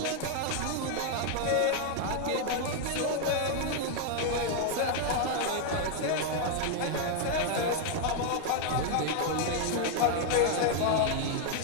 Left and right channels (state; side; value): different; both; correlation 0.00